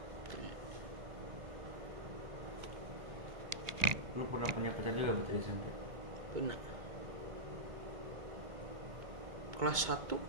Lu pernah punya pacar juga berarti di SMP? Benar. Kelas 1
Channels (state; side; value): late; left; 2.3 ms